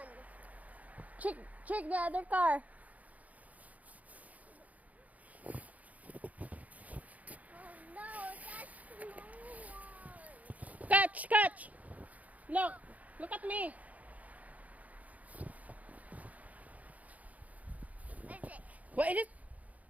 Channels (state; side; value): late; left; 0.073 ms